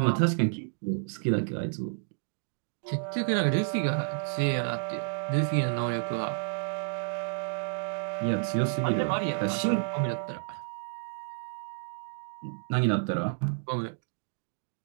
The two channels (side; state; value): left; silent; digital silence